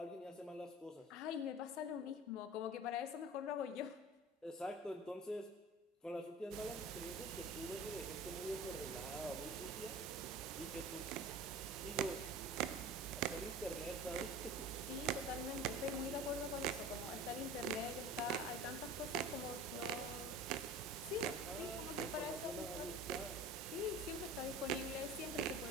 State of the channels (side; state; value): both; normal; correlation 0.38